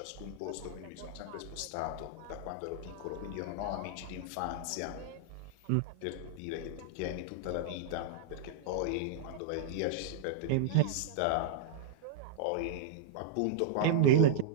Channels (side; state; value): both; different; correlation -0.01